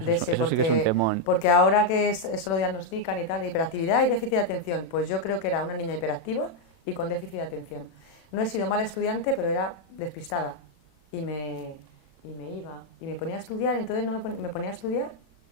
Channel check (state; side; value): late; right; 37 ms